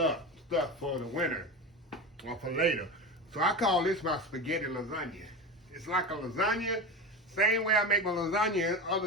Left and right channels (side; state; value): both; normal; correlation 0.23